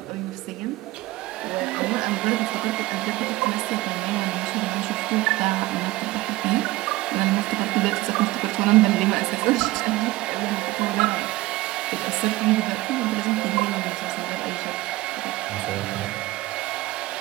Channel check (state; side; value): quieter; left; 18.9 dB